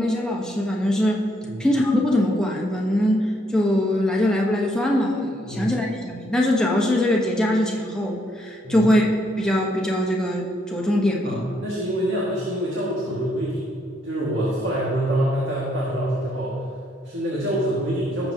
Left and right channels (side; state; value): both; normal; correlation 0.73